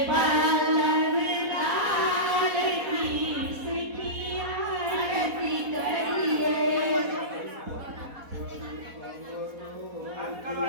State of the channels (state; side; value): late; left; 4.1 ms